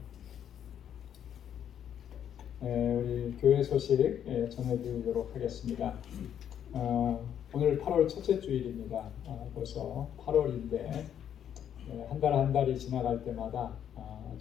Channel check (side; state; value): right; quieter; 9.4 dB